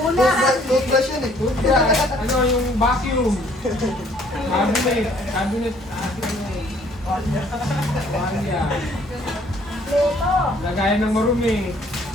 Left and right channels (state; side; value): normal; both; correlation 0.61